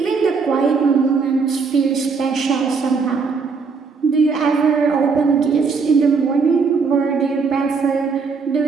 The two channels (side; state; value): left; quieter; 5.0 dB